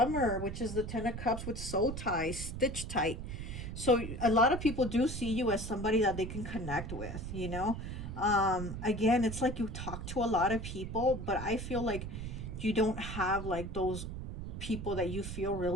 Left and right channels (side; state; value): right; noise; rumble, 7 dB below the sound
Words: which is the Ten of Cups with soul ties, stitch tight. So a lot of people do see you as somebody that they can connect with, you know. Again, it's like you talk to a lot of people, but I feel like you don't have like those people that you feel